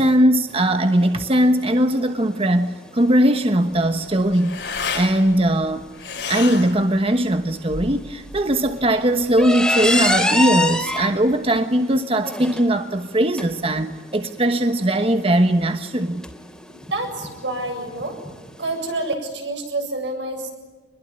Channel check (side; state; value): both; normal; correlation 0.66